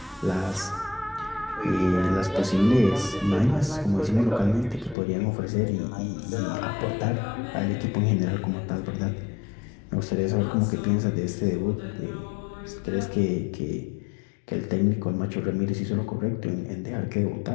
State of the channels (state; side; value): drops out; right; at 5.0 s